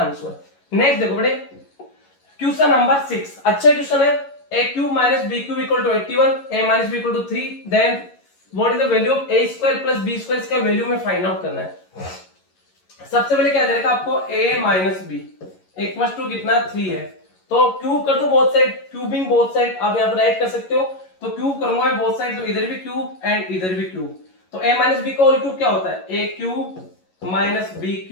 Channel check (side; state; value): right; late; 11 ms